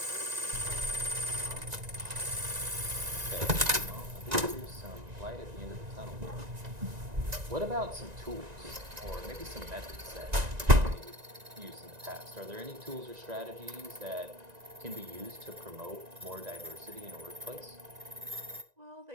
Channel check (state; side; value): late; left; 1.9 ms